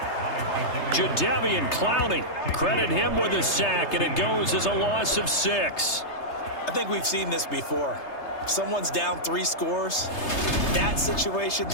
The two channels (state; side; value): late; right; 3.3 ms